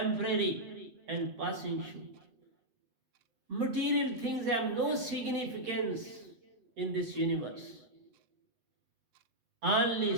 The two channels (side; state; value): left; late; 8.3 ms